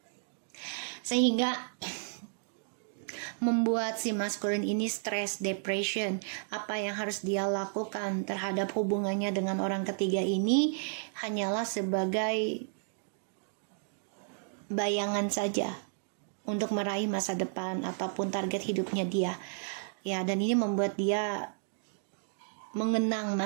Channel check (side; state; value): left; silent; digital silence